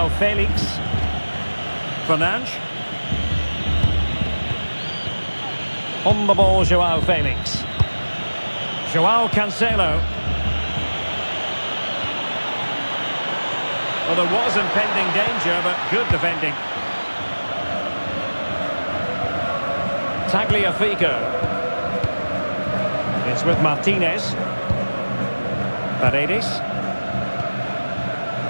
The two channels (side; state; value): both; inverted; correlation -1.00